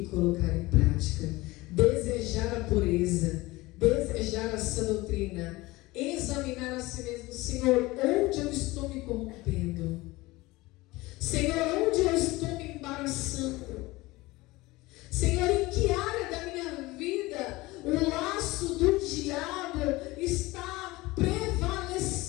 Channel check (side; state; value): right; quieter; 20.7 dB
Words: colocar em prática. Desejar a pureza, desejar a sã doutrina, examinar a si mesmo. Senhor, onde eu estou me corrompendo? Senhor, onde eu estou me embaraçando? Senhor, em que área da minha vida o laço do diabo está